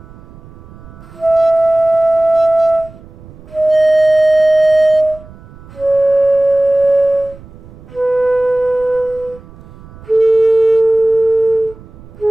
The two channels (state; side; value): noise; right; rumble, 21 dB below the sound